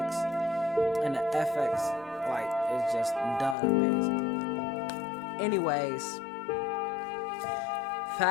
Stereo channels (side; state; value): right; drops out; at 3.6 s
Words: and the FX, like, it's just done amazing. Anyways,